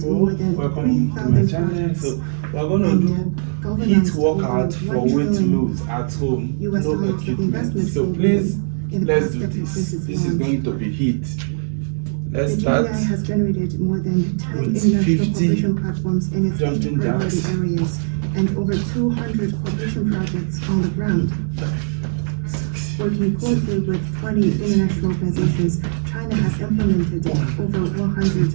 welcome to my channel. So we're going to do heat workout for weight loss at home, no equipment. So please, let's do this. This is going to be heat. Let's start has generated more than 10 with international 50 cooperation platforms in its 8 priority areas and over 200 cooperation projects on the ground. Working closely with 20 international organizations, China has implemented over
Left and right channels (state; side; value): silent; left; 66 dB below the other